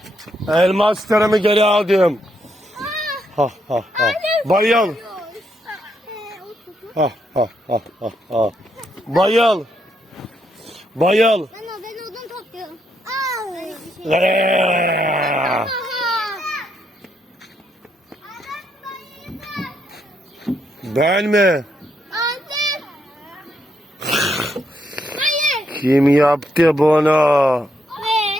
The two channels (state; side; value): normal; both; correlation 0.77